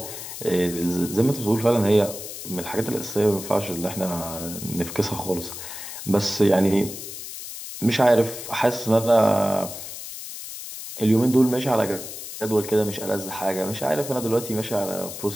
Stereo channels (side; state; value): left; noise; hiss, 10 dB below the sound